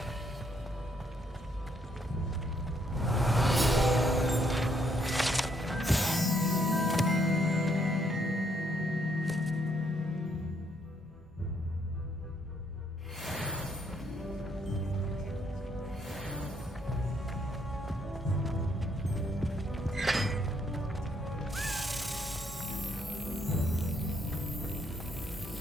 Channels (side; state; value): both; normal; correlation 0.72